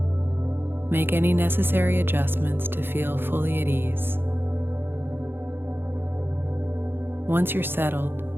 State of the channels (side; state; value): left; late; 0.10 ms